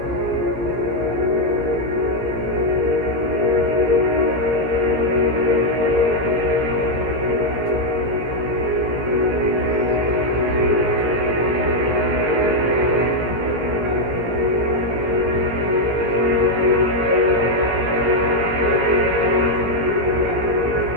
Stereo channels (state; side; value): late; left; 17 ms